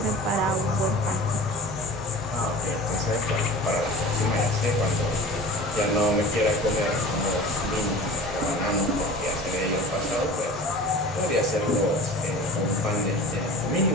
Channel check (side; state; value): both; normal; correlation 0.39